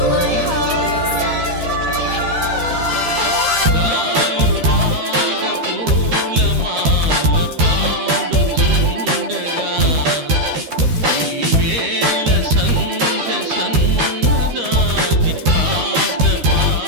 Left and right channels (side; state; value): left; late; 13 ms